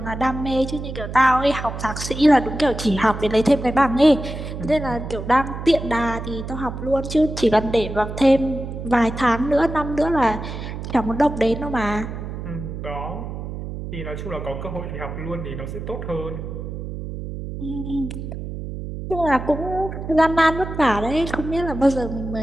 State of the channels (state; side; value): noise; right; hum, 7 dB below the sound